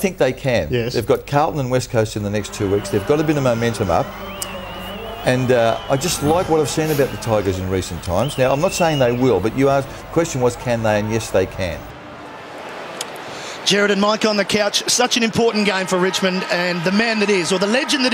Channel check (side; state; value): both; identical; correlation 1.00